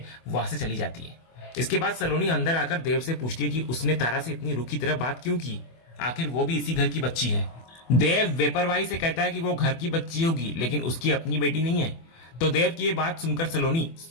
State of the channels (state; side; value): late; right; 24 ms